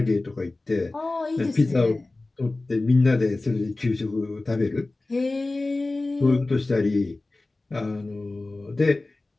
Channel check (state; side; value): quieter; right; 3.1 dB